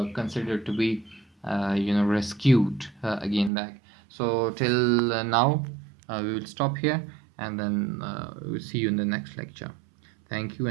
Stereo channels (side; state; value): left; drops out; at 3.5 s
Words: considered to be rescued again back. So till now we will stop here, and then we'll see you in the next lecture. Thank you,